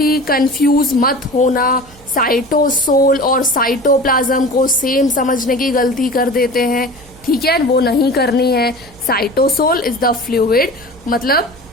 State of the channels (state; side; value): noise; right; hum, 24 dB below the sound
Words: कंफ्यूज मत होना, साइटोसोल और साइटोप्लाज्म को सेम समझने की गलती कर देते हैं। ठीक है, वो नहीं करनी है। साइटोसोल इज द फ्लूइड, मतलब